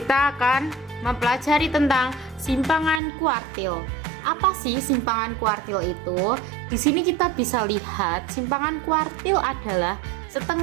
akan mempelajari tentang simpangan kuartil. Apa sih simpangan kuartil itu? Di sini kita bisa lihat simpangan kuartil adalah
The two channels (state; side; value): drops out; left; at 3.0 s